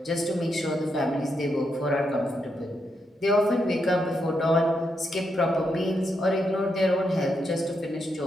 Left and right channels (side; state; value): both; normal; correlation 0.81